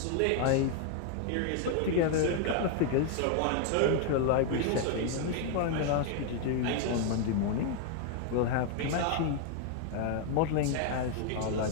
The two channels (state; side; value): different; both; correlation 0.00